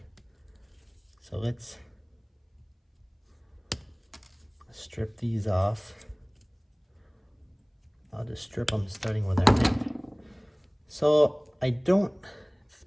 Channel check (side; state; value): both; identical; correlation 1.00